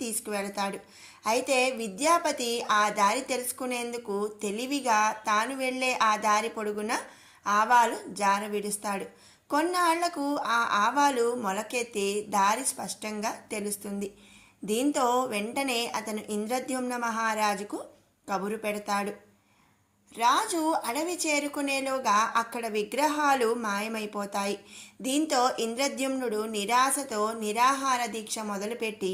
తీసుకువెళతాడు. అయితే విద్యాపతి ఆ దారి తెలుసుకునేందుకు తెలివిగా తాను వెళ్లే ఆ దారి పొడుగున ఆవాలు జార విడుస్తాడు. కొన్నాళ్లకు ఆ ఆవాలు మొలకెత్తి దారి స్పష్టంగా తెలుస్తుంది. దీంతో వెంటనే అతను ఇంద్రద్యుమ్న మహారాజుకు కబురు పెడతాడు. రాజు అడవి చేరుకునేలోగా అక్కడ విగ్రహాలు మాయమైపోతాయి. దీంతో ఇంద్రద్యుమ్నుడు నిరాశతో నిరాహార దీక్ష మొదలుపెట్టి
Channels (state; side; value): identical; both; correlation 1.00